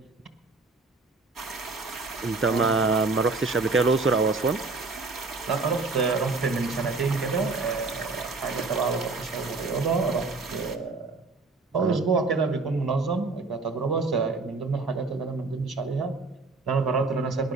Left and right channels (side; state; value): left; quieter; 3.8 dB